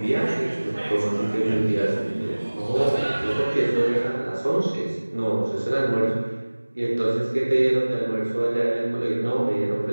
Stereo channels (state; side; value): inverted; both; correlation -1.00